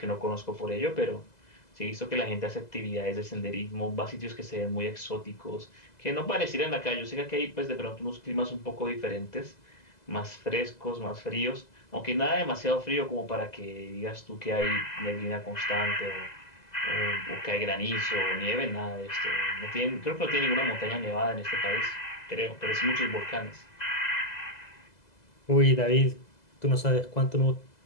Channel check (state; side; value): late; right; 2.0 ms